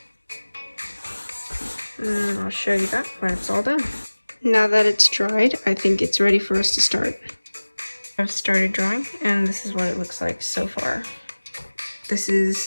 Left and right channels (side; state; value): both; inverted; correlation -1.00